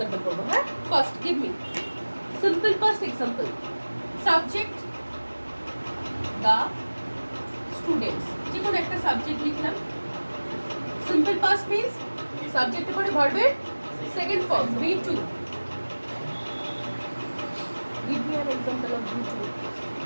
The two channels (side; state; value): both; inverted; correlation -1.00